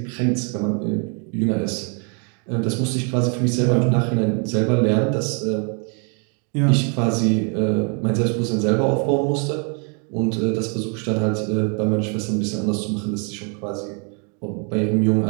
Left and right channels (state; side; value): quieter; left; 38.2 dB